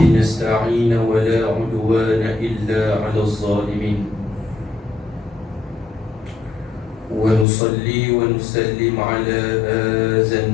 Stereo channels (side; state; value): right; drops out; at 7.5 s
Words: نستعين ولا عدوان إلا على الظالمين، ونصلي ونسلم على هذا